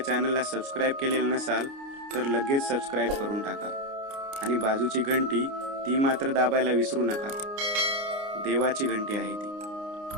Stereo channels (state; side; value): late; left; 29 ms